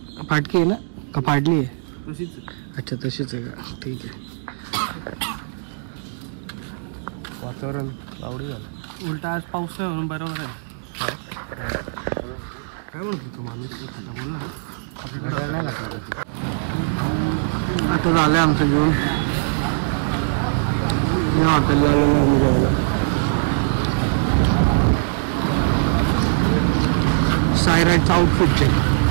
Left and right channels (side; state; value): left; silent; 64 dB below the other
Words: फाटकी आहे ना का फाडली आहे? अच्छा तशीच आहे का? ठीक आहे. वातावरण आवडी झालं. उलटा आज पाऊस नाही म्हणून बरोबर आहे. काय म्हणत होतो माणूस? आता झालंय आमचं जेवण. या हॉटेलला आलेलो आम्ही जेवायला. सायराइडचा आउटफिट चेक.